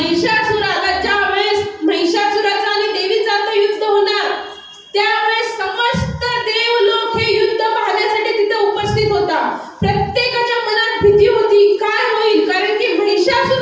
ज्यावेळेस महिषासुराचा आणि देवीचा युद्ध होणार त्यावेळेस समस्त देवलोक हे युद्ध पाहण्यासाठी तिथे उपस्थित होता. प्रत्येकाच्या मनात भीती होती, काय होईल, कारण की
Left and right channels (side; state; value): both; identical; correlation 1.00